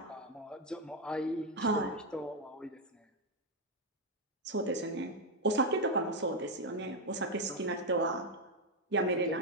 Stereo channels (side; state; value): both; normal; correlation 0.03